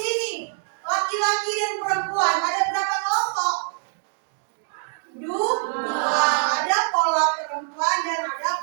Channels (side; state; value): left; silent; digital silence